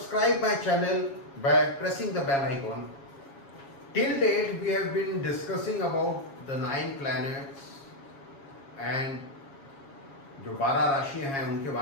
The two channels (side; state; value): right; late; 7.3 ms